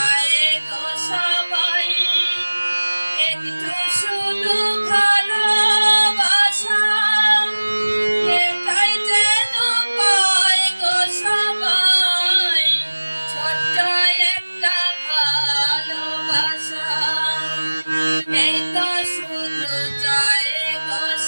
গো সবাই, একটু শুধু ভালোবাসা, এটাই যেন পায় গো সবাই। ছোট্ট একটা ভালোবাসা, এই তো শুধু চায় গো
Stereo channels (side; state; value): both; inverted; correlation -1.00